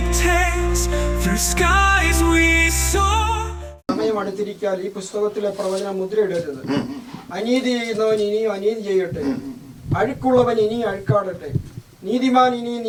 tales through skies we soar. സമയം അടുത്തിരിക്കാൻ ഈ പുസ്തകത്തിലെ പ്രവചനം മുദ്രയിടരുത്. അനീതി ചെയ്യുന്നവൻ ഇനിയും അനീതി ചെയ്യട്ടെ, അഴുക്കുള്ളവൻ ഇനിയും അഴുക്കാടട്ടെ, നീതിമാൻ ഇനിയും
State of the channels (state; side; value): identical; both; correlation 1.00